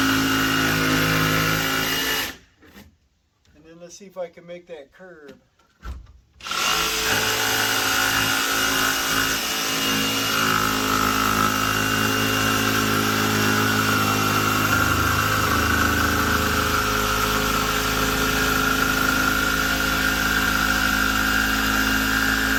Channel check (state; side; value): identical; both; correlation 1.00